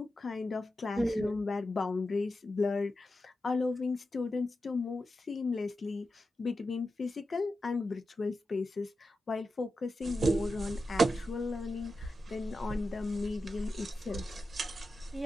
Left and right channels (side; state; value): both; normal; correlation 0.90